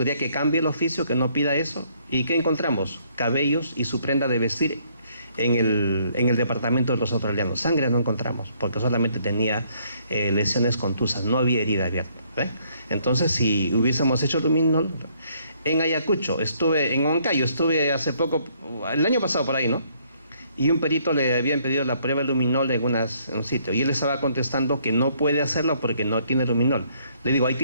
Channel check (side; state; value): both; inverted; correlation -0.67